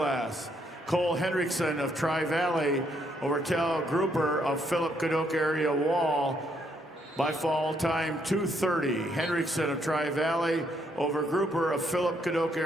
Cole Hendrickson of Tri-Valley over Cal Grouper of Philip Cadoc area Wall by fall time 2:30. Hendrickson of Tri-Valley over Grouper of Philip Cadoc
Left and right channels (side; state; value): both; normal; correlation 0.73